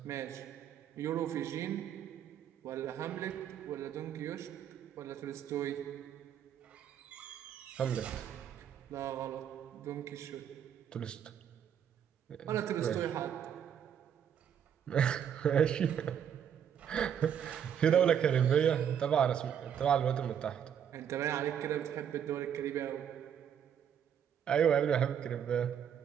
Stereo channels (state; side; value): quieter; left; 8.7 dB